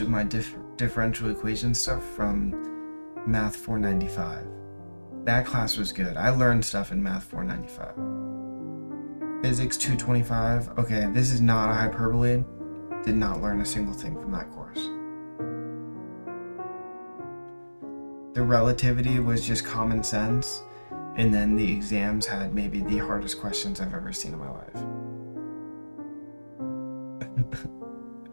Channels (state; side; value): inverted; both; correlation -1.00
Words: of my differential equation stuff from Math 495. That class was good. I learned stuff in Math 495. Physics 225. Okay, this is not a hyperbole. Did not learn a single thing from that course. The relativity was just common sense, and then the exams had maybe the hardest questions I've ever seen in my life.